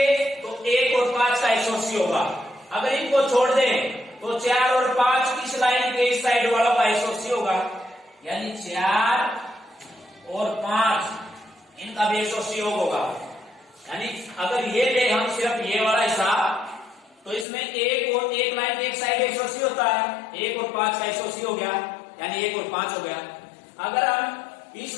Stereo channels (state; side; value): drops out; right; at 17.4 s